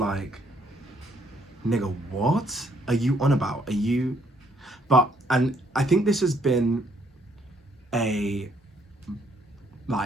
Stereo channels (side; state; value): both; normal; correlation 0.68